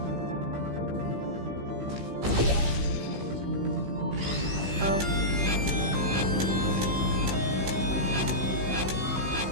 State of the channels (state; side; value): late; left; 16 ms